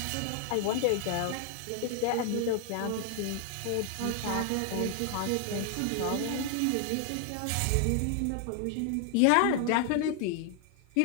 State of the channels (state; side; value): different; both; correlation 0.00